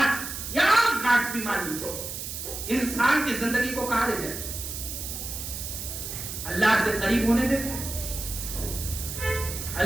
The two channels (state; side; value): noise; right; hiss, 7 dB below the sound